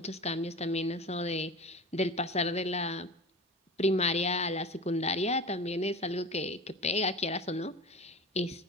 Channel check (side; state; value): both; normal; correlation 0.32